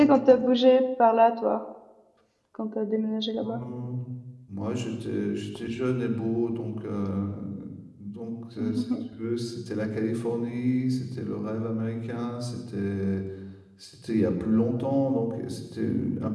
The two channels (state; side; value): identical; both; correlation 1.00